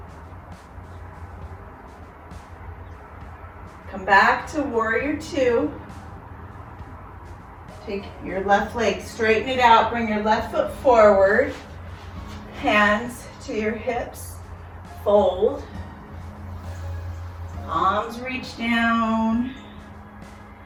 Come back to warrior two. Take your left leg, straighten it out, bring your left foot forward. Hands to your hips, fold. Arms reach down.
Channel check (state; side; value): identical; both; correlation 1.00